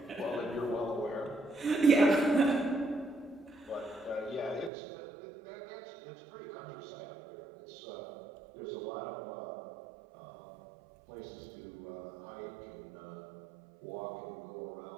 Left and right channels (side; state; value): left; drops out; at 4.7 s